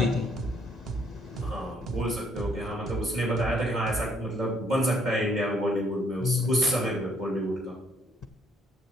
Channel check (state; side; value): normal; both; correlation 0.67